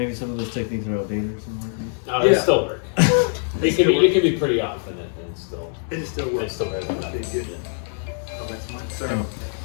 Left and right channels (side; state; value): right; silent; 60 dB below the other